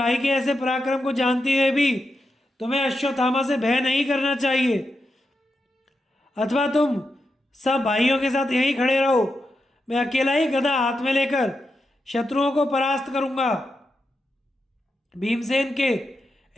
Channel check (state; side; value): normal; both; correlation 0.87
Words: के ऐसे पराक्रम को जानते हुए भी तुम्हें अश्वत्थामा से भय नहीं करना चाहिए, अथवा तुम सब भाइयों के साथ यहीं खड़े रहो। मैं अकेला ही गदा हाथ में लेकर शत्रुओं को परास्त करूंगा। भीमसेन के